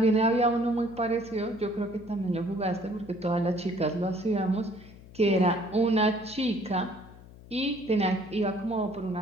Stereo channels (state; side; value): noise; left; hum, 20 dB below the sound